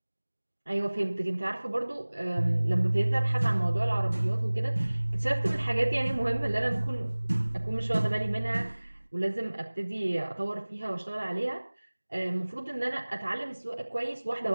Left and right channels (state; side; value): inverted; both; correlation -1.00